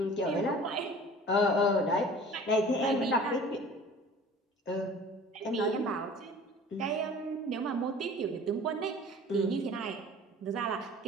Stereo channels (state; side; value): normal; both; correlation 0.45